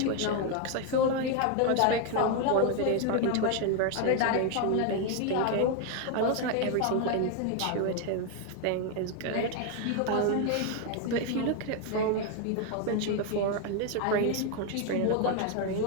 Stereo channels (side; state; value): both; different; correlation 0.01